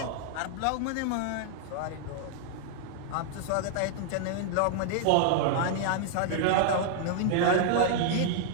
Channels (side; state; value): both; different; correlation -0.01